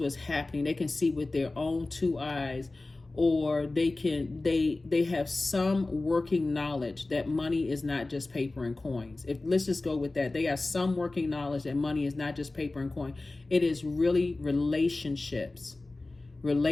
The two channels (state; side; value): quieter; right; 3.1 dB